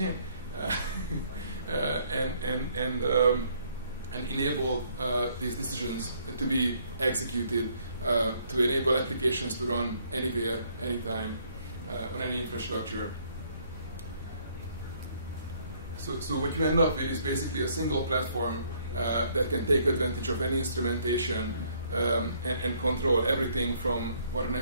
and enable these decisions to be executed to enable applications to run anywhere, anytime, on any infrastructure. So what you end up with is basically a single platform that can take advantage of any instrumentation and control everything from what an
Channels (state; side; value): inverted; both; correlation -0.65